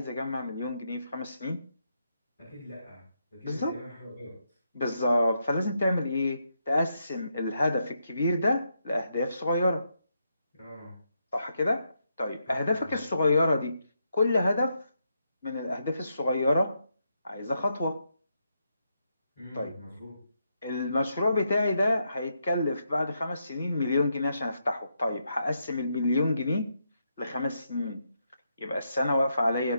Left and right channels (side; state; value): both; inverted; correlation -0.81